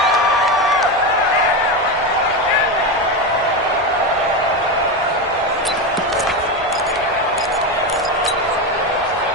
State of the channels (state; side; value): normal; both; correlation 0.15